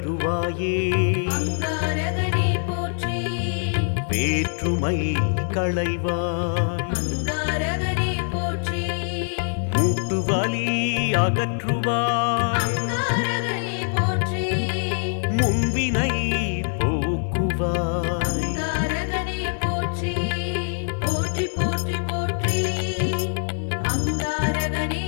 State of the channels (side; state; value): right; silent; digital silence